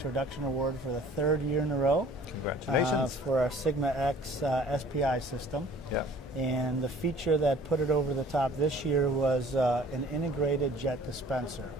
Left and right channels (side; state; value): both; normal; correlation 0.51